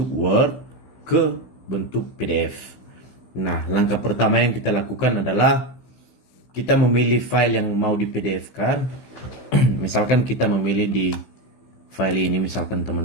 Word ke bentuk PDF. Nah, langkah pertama yang kita lakukan adalah kita memilih file yang mau di PDF-kan. Misalkan kita memilih di file ini, misalkan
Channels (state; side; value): late; right; 16 ms